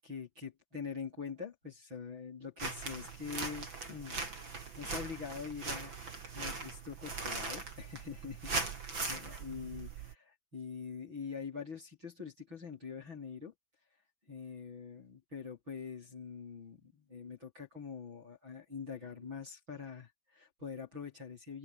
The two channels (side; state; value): left; late; 6.1 ms